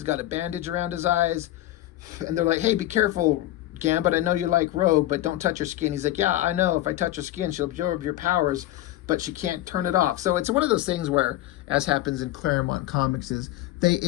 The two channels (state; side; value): quieter; right; 15.0 dB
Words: got a bandage around his eyes. And they're like, hey, be careful, Gambit. I know you like Rogue, but don't touch her skin. He's like, yeah, I know. If I touch her skin, she'll absorb your powers, but she can't turn it off. So it's one of those things where, as happens in Claremont comics, is they